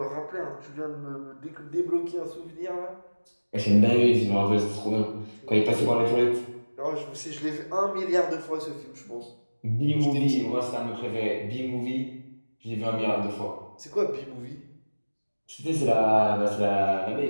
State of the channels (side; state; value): both; inverted; correlation -1.00